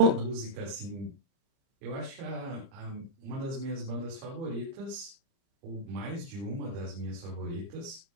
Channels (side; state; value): left; late; 30 ms